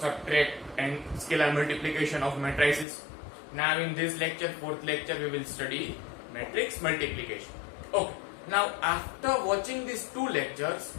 and scalar multiplication of matrices. Now in this lecture, fourth lecture, we will study matrix multiplication. Okay, now after watching these two lectures,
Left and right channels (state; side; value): drops out; right; at 2.9 s